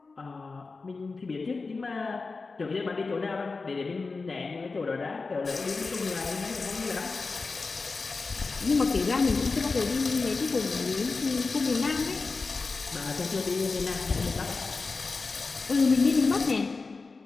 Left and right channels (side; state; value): right; quieter; 4.1 dB